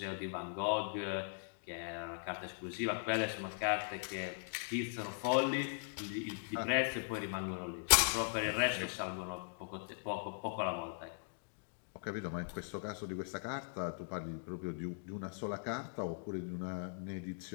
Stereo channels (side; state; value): right; silent; digital silence